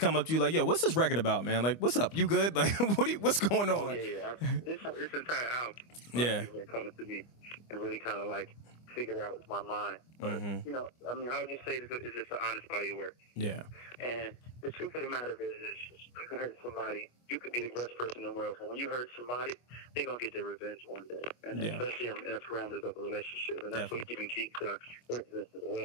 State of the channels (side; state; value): right; late; 25 ms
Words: up to you like, yo, what's this record about, man? Like, what's up? You good? Like, what's going on? Oh, yeah. This entire album, people coming to me and really kind of like figure out my mind. But, I mean, I would just say it's just an honest body of work. Yeah. And the truth of the matter is you can hurt somebody. You could be the best person in the world, but when you hurt somebody, they're going to get their revenge one day. And especially in the parameters of a relationship. And that's what even keeps working this as